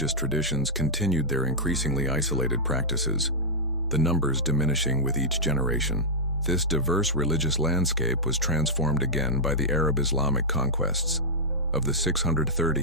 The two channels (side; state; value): both; normal; correlation -0.08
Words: traditions, continued their increasingly isolated practices, the numbers diminishing with each generation. This diverse religious landscape was transformed again by the Arab-Islamic conquests of the